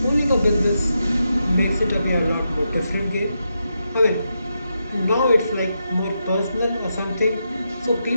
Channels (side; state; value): both; inverted; correlation -0.85